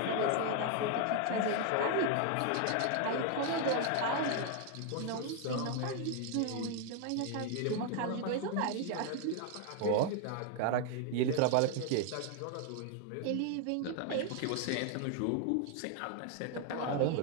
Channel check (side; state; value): both; different; correlation 0.00